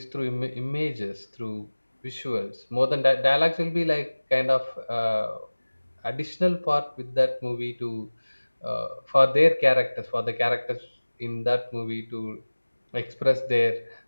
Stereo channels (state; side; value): inverted; both; correlation -1.00